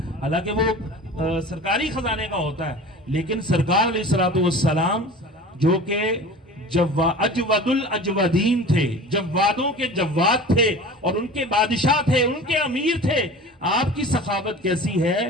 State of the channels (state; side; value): normal; both; correlation 0.38